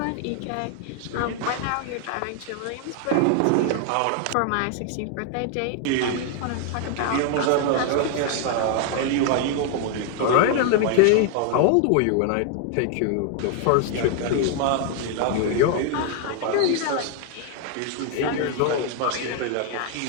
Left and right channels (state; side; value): different; both; correlation 0.00